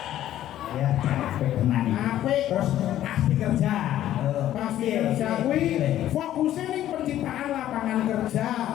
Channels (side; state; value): right; quieter; 12.6 dB